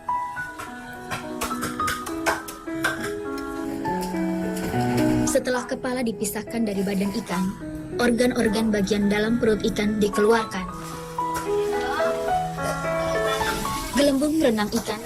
Setelah kepala dipisahkan dari badan ikan, organ-organ bagian dalam perut ikan dikeluarkan. Gelembung renang ikan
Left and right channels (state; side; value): identical; both; correlation 1.00